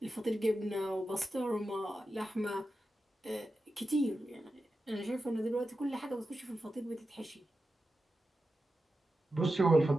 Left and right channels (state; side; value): normal; both; correlation 0.91